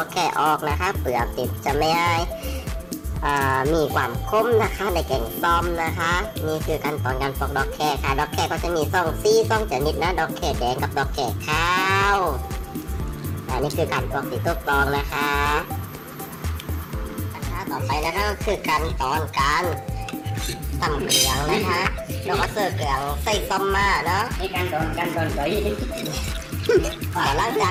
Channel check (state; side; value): identical; both; correlation 1.00